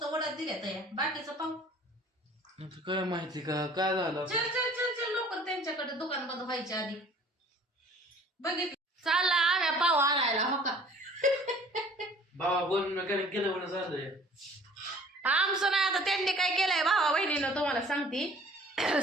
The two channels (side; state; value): both; normal; correlation 0.51